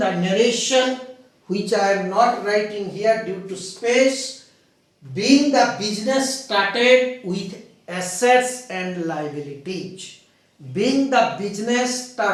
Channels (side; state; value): both; identical; correlation 1.00